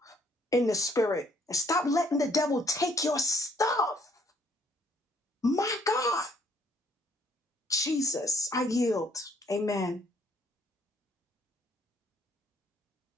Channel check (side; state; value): both; normal; correlation 0.65